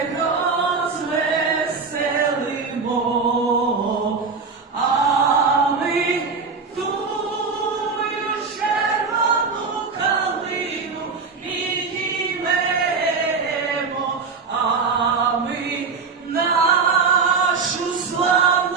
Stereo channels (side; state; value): left; quieter; 4.9 dB